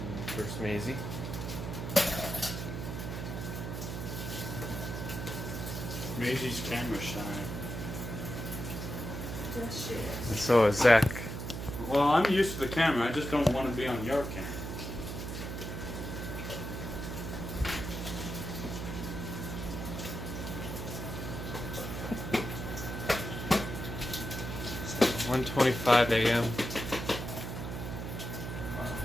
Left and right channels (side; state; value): right; noise; hum, 5 dB below the sound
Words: First Maisie. Maisie's camera shy. Yes, she And is. so is Zach. Well, I'm used to the camera. I just don't want to be on your camera. It's 1:25 a.m.